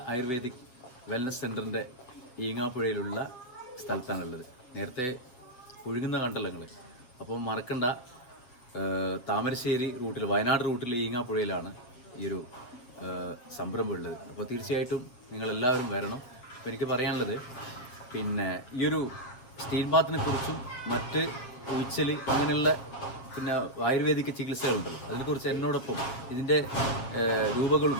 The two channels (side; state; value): right; late; 8.0 ms